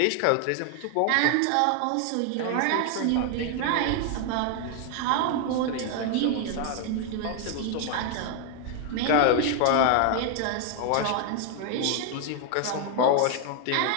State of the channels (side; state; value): both; different; correlation 0.01